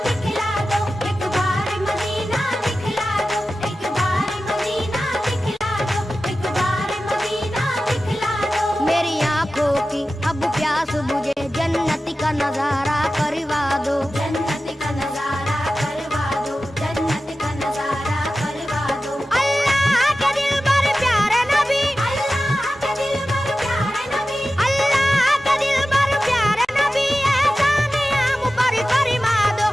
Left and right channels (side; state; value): both; normal; correlation 0.94